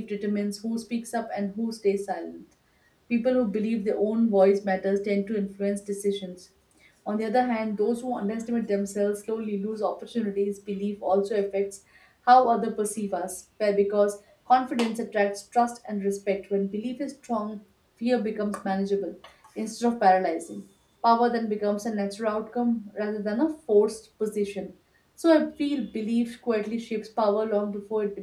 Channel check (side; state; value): both; identical; correlation 1.00